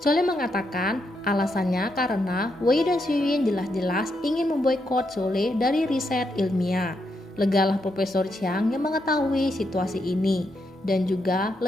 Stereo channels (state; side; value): normal; both; correlation 0.81